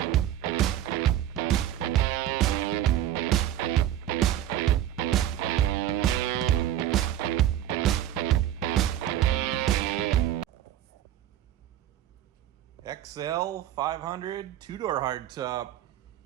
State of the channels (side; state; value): left; quieter; 11.9 dB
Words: XL 500 two-door hardtop.